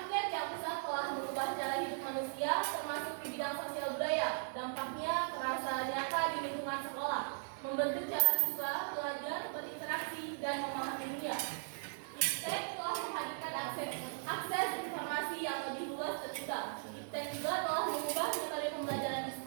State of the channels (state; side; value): silent; left; digital silence